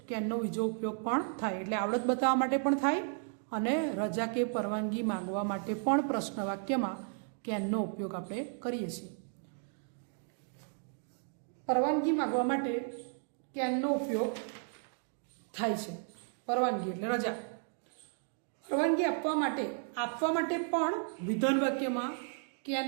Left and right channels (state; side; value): silent; left; 55 dB below the other